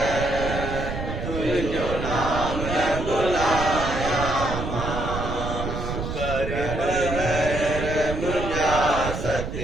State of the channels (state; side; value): noise; right; rumble, 5 dB below the sound